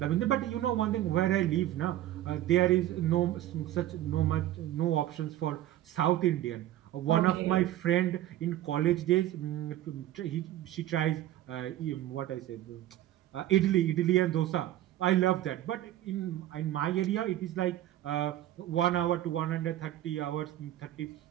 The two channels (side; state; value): left; quieter; 13.5 dB